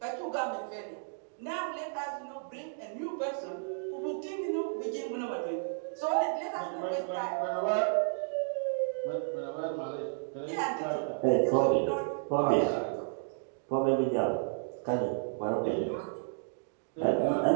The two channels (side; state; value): left; silent; digital silence